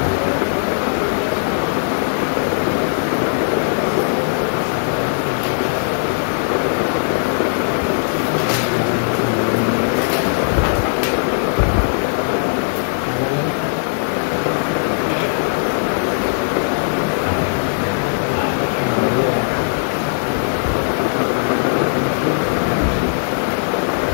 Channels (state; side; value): silent; right; 67 dB below the other